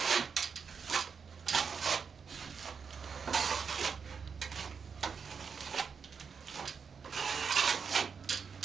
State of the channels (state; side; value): quieter; left; 6.0 dB